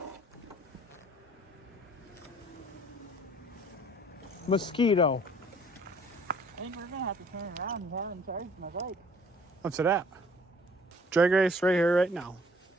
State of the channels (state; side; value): normal; both; correlation 0.56